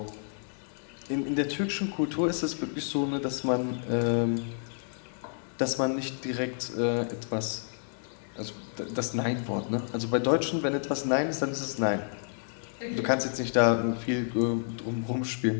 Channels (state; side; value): silent; right; digital silence